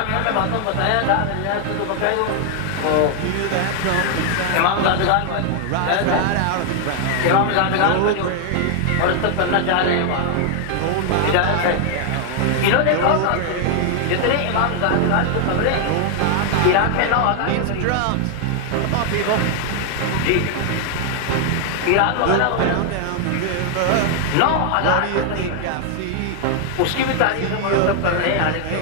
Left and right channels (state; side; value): different; both; correlation 0.00